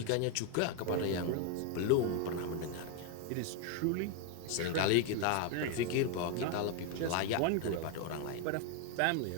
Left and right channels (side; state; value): both; different; correlation 0.01